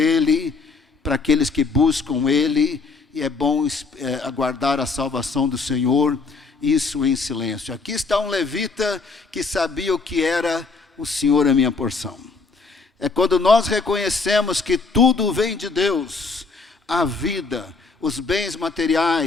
para aqueles que buscam Ele, e é bom aguardar a salvação do Senhor, isso em silêncio. Aqui está um levita que sabia o que era o Senhor é minha porção. É quando nós reconhecemos que tudo vem de Deus, a vida, os bens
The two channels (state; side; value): quieter; right; 4.3 dB